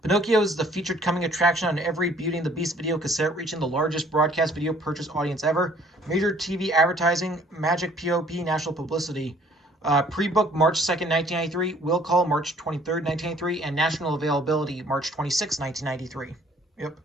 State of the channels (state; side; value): normal; both; correlation 0.58